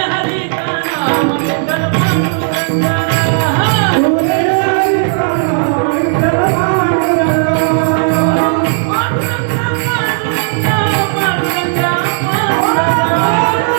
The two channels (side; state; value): left; silent; digital silence